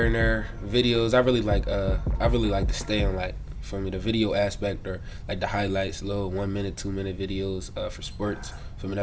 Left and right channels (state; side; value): identical; both; correlation 1.00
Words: and there, videos. I really like to stay on like for me the video aspect or like the highlights, little 1 minute, 2 minute videos for sports. For me,